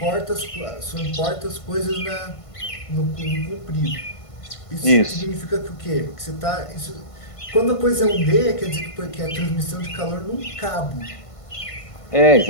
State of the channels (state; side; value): late; right; 1.5 ms